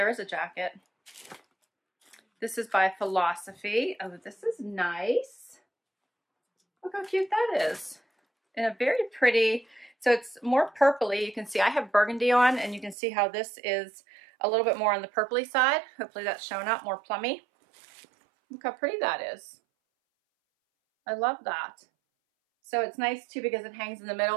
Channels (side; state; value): left; drops out; at 13.0 s